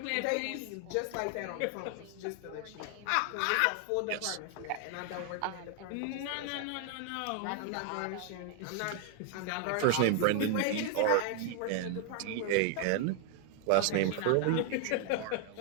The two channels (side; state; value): both; different; correlation 0.00